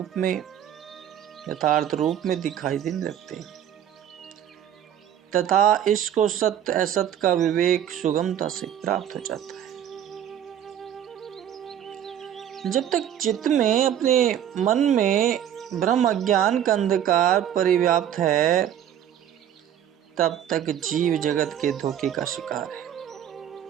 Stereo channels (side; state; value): left; quieter; 10.2 dB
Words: रूप में दिखाई देने लगते हैं तथा इसको सत्य असत्य का विवेक सुगमता से प्राप्त हो जाता है। जब तक चित्त में, अपने मन में ब्रह्म अज्ञान का अंधकार परिव्याप्त है, तब तक जीव जगत के धोखे का शिकार है।